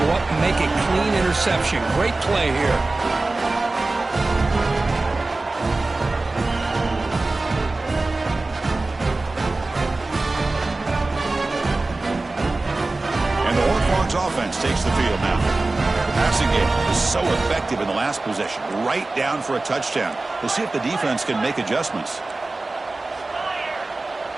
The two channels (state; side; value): quieter; left; 3.2 dB